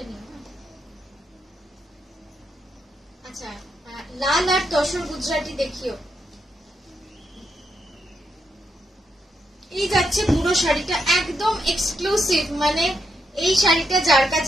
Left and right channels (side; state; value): both; normal; correlation 0.81